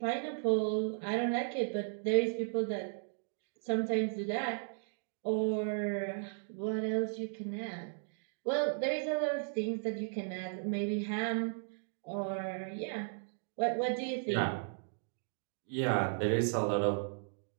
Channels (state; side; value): silent; left; digital silence